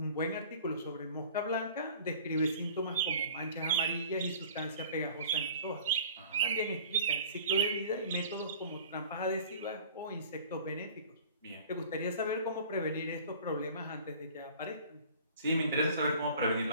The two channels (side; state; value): both; inverted; correlation -0.46